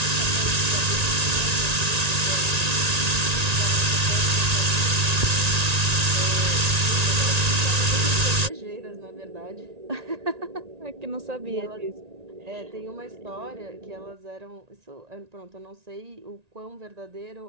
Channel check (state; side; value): late; left; 1.9 ms